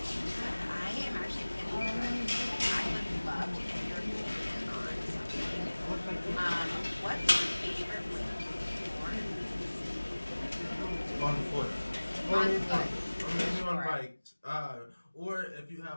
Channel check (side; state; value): both; inverted; correlation -1.00